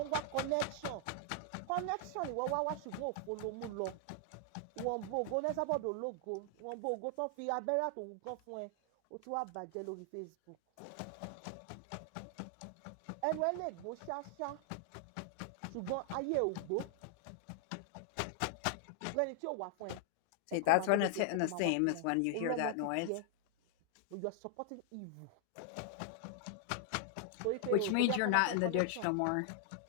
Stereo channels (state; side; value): different; both; correlation 0.00